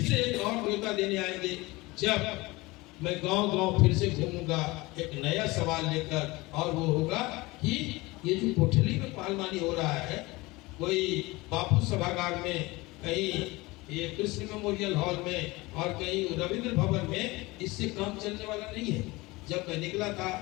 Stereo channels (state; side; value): quieter; right; 22.1 dB